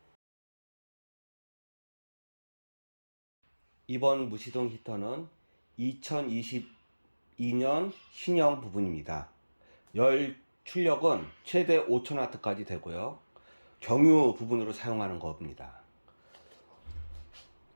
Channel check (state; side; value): inverted; both; correlation -1.00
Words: 이번 무시동 히터는 2022년 신형 부분입니다. 열 출력은 최대 5000W까지 되고요. 경유 부분으로 사용하는 겁니다.